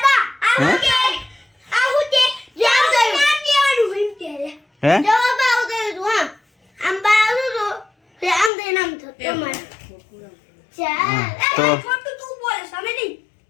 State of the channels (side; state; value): right; drops out; at 8.5 s